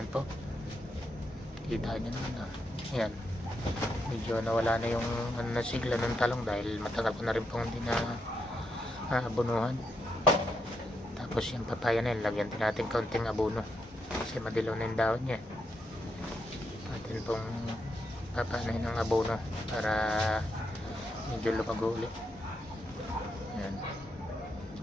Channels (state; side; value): normal; both; correlation 0.81